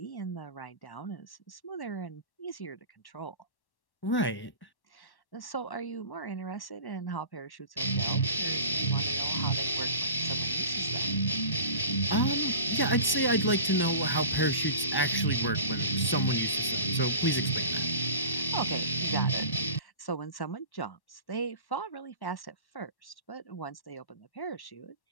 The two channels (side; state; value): right; late; 1.1 ms